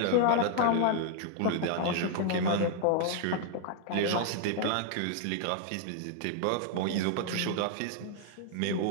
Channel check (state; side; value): different; both; correlation 0.00